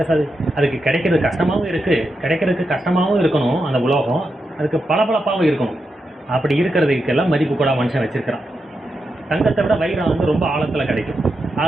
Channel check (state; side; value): normal; both; correlation 0.86